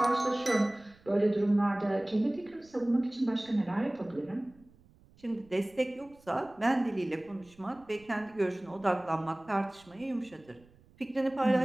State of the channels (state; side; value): noise; right; rumble, 28 dB below the sound